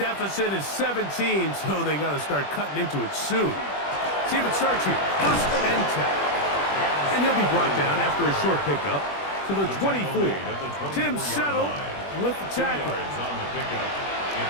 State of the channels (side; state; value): right; late; 21 ms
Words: deficit is 17, so they got to start cutting into it soon. See if it starts here. First and 10. And he'll be brought down after a short pickup to the 24. Tim Settle with the tackle. On the pickup.